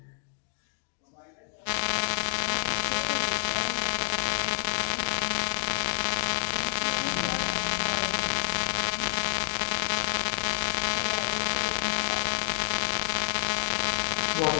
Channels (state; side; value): silent; right; digital silence